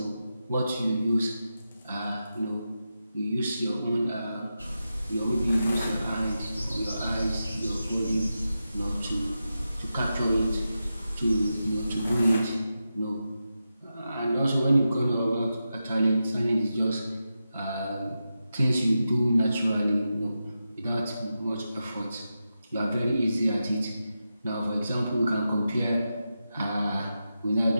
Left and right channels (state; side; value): inverted; both; correlation -0.90